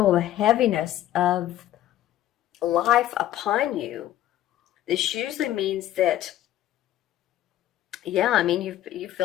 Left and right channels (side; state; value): right; quieter; 13.0 dB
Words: the heaviness of life upon you. This usually means that, you